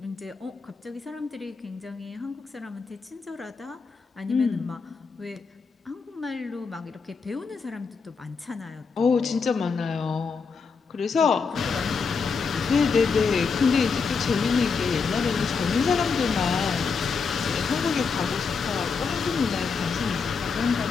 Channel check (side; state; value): right; quieter; 5.2 dB